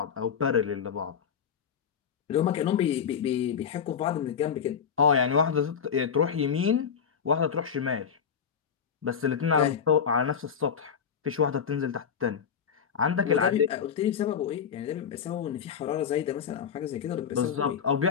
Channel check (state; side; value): quieter; right; 7.2 dB